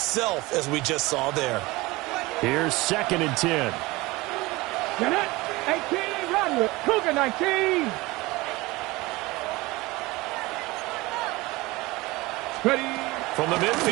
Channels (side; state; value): left; quieter; 21.4 dB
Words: as we just saw there. Here's 2nd and 10. 18, run. Cougar 19. Ready? From the